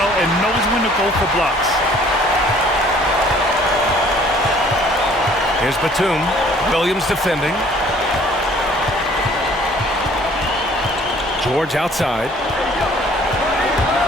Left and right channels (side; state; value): both; normal; correlation 0.56